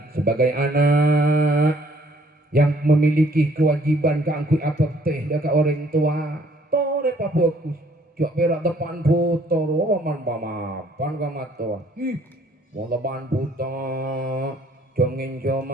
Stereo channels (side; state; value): both; normal; correlation 0.62